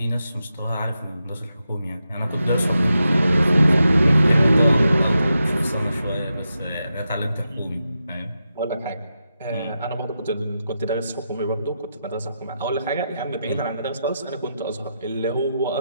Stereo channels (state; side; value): inverted; both; correlation -0.87